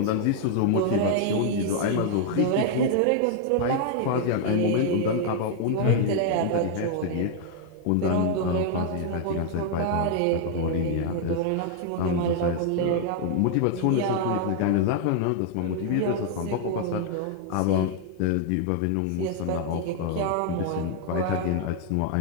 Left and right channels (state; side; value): different; both; correlation 0.00